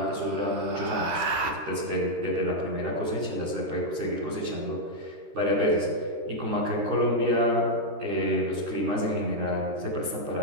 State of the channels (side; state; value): left; late; 13 ms